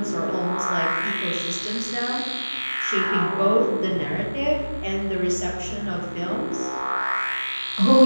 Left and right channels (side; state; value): both; inverted; correlation -1.00